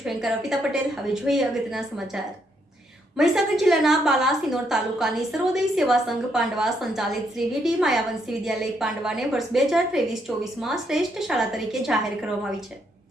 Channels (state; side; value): normal; both; correlation 0.75